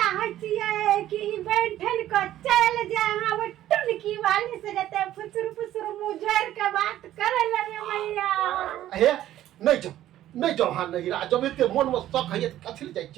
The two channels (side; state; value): left; quieter; 13.1 dB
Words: छियै कि बैठन के चल जाए अहाँ वो टुनकी वाली से जते फुसुर मुँह जोड़ के बात करे ले रे मैया हे नहीं जाओ हाँ नहिरा जब एते मन में शक है कथि ले जाइ